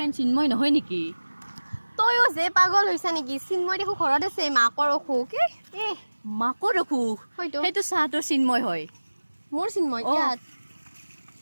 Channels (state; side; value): inverted; both; correlation -1.00